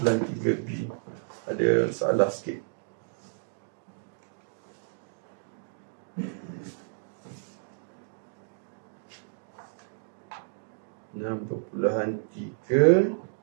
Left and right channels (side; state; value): left; silent; digital silence